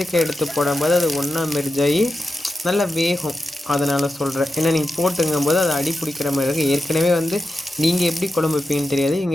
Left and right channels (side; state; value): both; normal; correlation 0.90